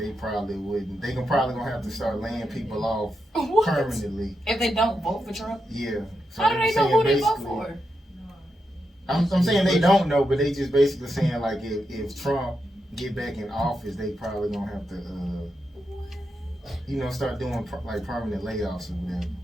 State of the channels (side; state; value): both; normal; correlation 0.86